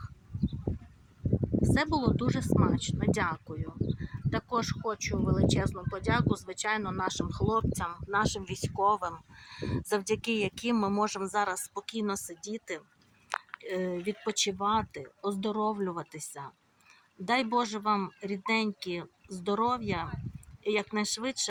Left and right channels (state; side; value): identical; both; correlation 1.00